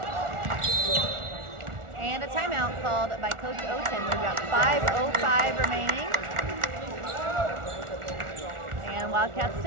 And a timeout called by Coach Oten. We've got 5:05 remaining. And Wildcats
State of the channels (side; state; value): left; late; 1.4 ms